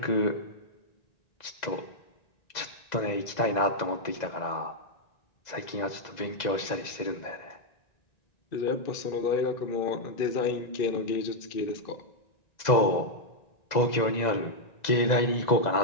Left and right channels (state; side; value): late; right; 2.0 ms